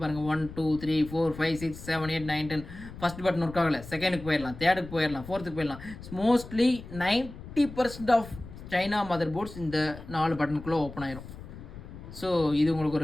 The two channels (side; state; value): left; noise; rumble, 14 dB below the sound